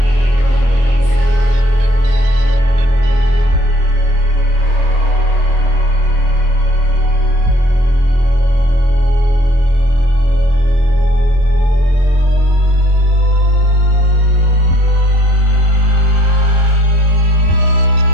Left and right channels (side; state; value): left; late; 23 ms